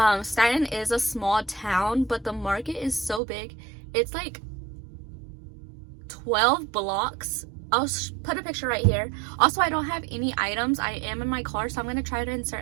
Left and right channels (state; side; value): drops out; left; at 3.2 s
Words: Staten is a small town, but the market is so big. It's like 12 blocks. I'll put a picture right here. Also, I don't have any items. I am in my car, so I'm going to try to